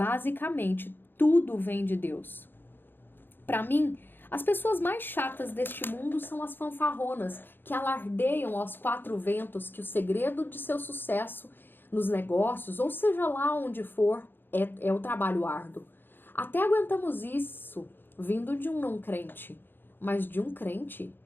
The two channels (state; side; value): late; right; 0.098 ms